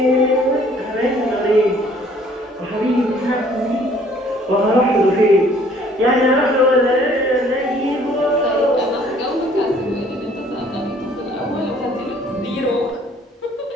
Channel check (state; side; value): normal; both; correlation 0.58